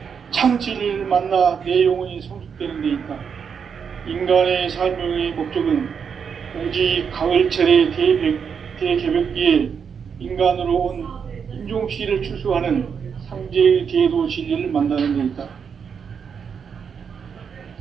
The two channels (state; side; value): quieter; left; 6.7 dB